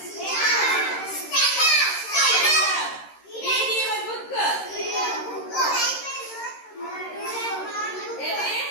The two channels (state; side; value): late; right; 13 ms